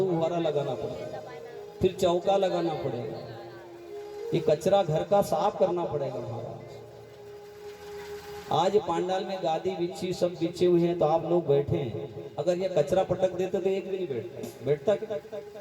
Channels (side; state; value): both; identical; correlation 1.00